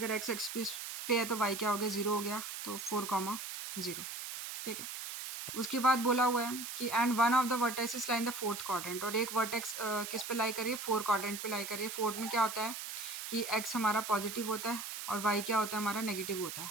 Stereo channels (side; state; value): right; noise; hiss, 7 dB below the sound